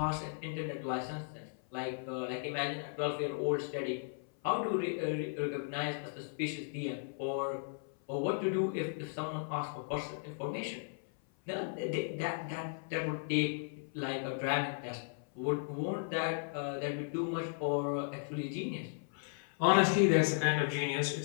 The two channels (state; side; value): silent; right; 54 dB below the other